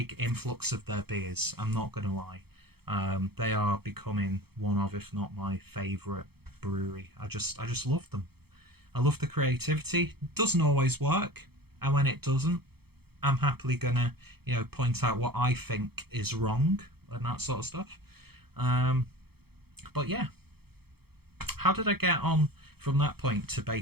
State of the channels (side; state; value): left; late; 0.96 ms